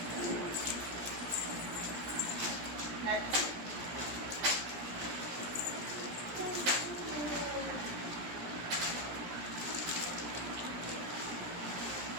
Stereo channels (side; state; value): left; late; 17 ms